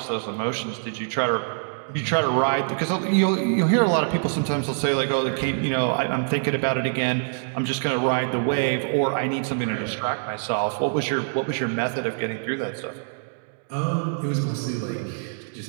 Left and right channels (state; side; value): silent; left; digital silence